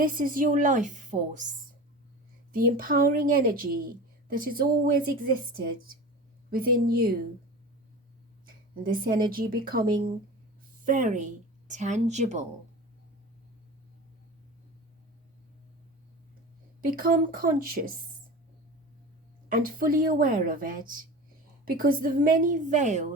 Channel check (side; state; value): both; normal; correlation 0.33